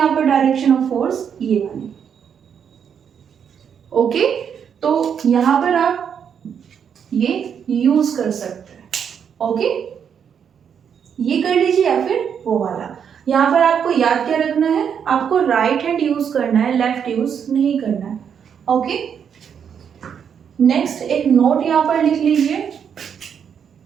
पर डायरेक्शन ऑफ फोर्स, ये वाली। ओके, तो यहाँ पर आप ये यूज कर सकते हैं। ओके, ये कर लीजिए या फिर वो वाला। यहाँ पर आपको याद क्या रखना है, आपको राइट हैंड यूज करना है, लेफ्ट यूज नहीं करना है। ओके, नेक्स्ट एक नोट यहाँ पर लिख लीजिए,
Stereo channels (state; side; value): quieter; left; 7.7 dB